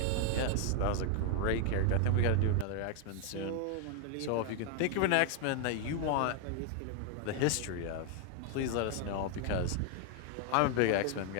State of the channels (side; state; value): both; different; correlation 0.00